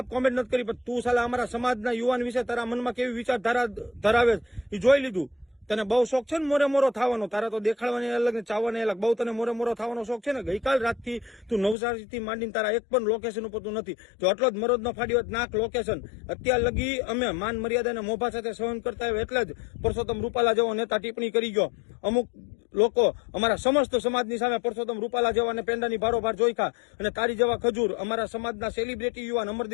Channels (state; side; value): drops out; right; at 11.8 s